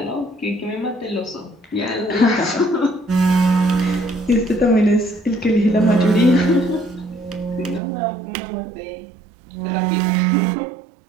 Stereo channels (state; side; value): drops out; left; at 7.8 s